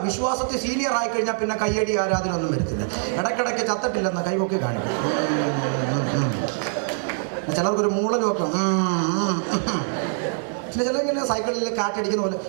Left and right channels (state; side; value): silent; left; digital silence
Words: വിശ്വാസത്തിൽ സീനിയർ ആയി കഴിഞ്ഞാൽ പിന്നെ കയ്യടി ആരാധന ഒന്നും വരത്തില്ല. ഇടയ്ക്കിടയ്ക്ക് ചത്തിട്ടില്ലെന്ന് കൈവൊക്കെ കാണിക്കും. ചിലർക്കൊരു മൂളലും ഒക്കെ. പിന്നെ ചിലങ്ങനെ സൈക്കിളിൽ കാറ്റടിക്കുന്ന പോലെ